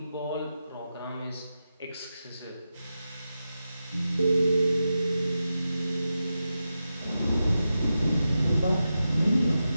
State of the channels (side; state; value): both; inverted; correlation -0.90